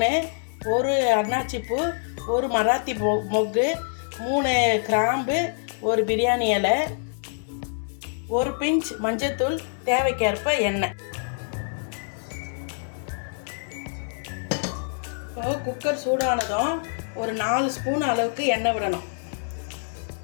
ஒரு அன்னாச்சிப்பூ, ஒரு மராத்தி மொக்கு, 3 கிராம்பு, ஒரு பிரியாணி இலை, ஒரு பிஞ்ச் மஞ்சத்தூள், தேவைக்கேற்ப எண்ணெய். இப்போ குக்கர் சூடானதும் ஒரு 4 ஸ்பூன் அளவுக்கு எண்ணெய் விடணும்.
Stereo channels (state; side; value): silent; right; 61 dB below the other